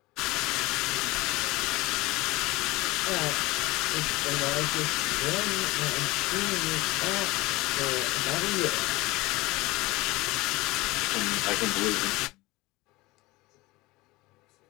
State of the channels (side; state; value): right; quieter; 21.1 dB